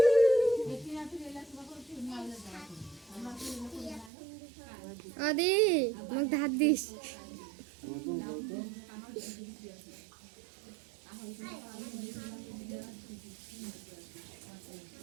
আদি মোক ধার দিস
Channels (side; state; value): left; drops out; at 4.1 s